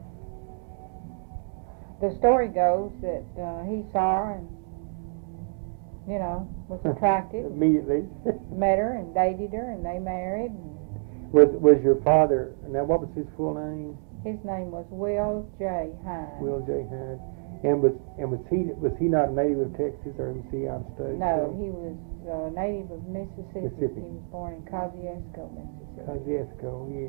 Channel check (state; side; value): silent; left; 59 dB below the other